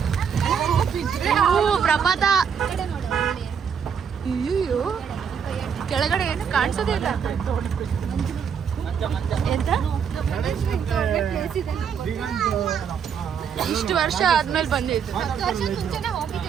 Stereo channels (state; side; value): quieter; left; 7.2 dB